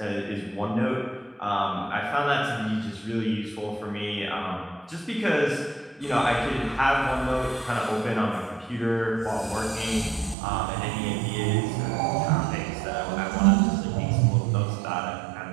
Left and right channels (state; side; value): drops out; left; at 10.4 s